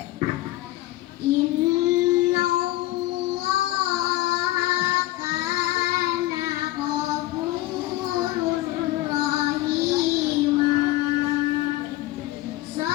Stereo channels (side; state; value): right; quieter; 17.2 dB